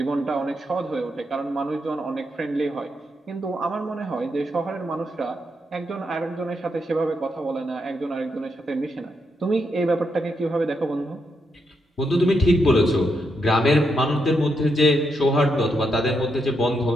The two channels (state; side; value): normal; both; correlation 0.81